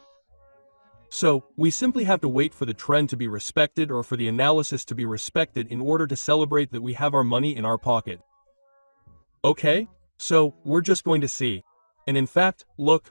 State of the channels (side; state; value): both; inverted; correlation -1.00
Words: So, we simply have to wait for the trend to be respected or for the analysis to be respected in order to celebrate that we have our money in our pocket. Okay? So, we're just going to see. And in fact,